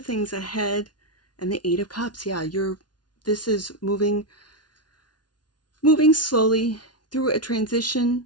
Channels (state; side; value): late; right; 0.69 ms